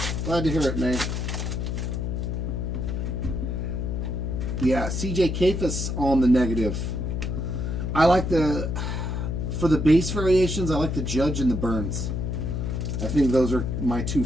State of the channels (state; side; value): noise; left; hum, 2 dB below the sound